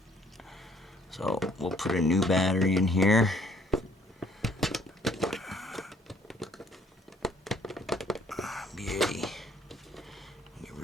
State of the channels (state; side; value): normal; both; correlation 0.61